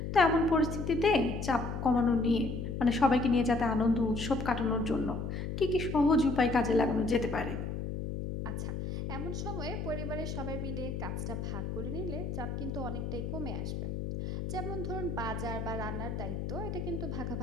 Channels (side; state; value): left; noise; hum, 4 dB below the sound